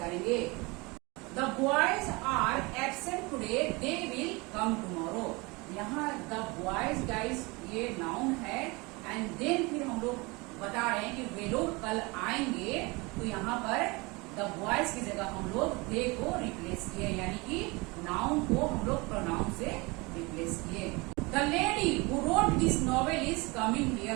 The boys are absent today, they will come tomorrow. यहाँ द बॉयज गाइस ये नाउन है एंड देन फिर हम लोग बता रहे हैं कि वे लोग कल आएंगे, तो यहाँ पर द बॉयज की जगह हम लोग दे को रिप्लेस किए, यानी कि नाउन को हम लोग प्रोनाउन से रिप्लेस किए। The lady who wrote this novel is coming here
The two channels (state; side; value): quieter; left; 25.7 dB